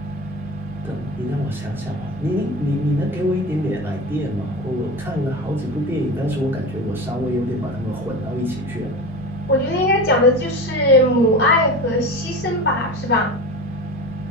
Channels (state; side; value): normal; both; correlation 0.29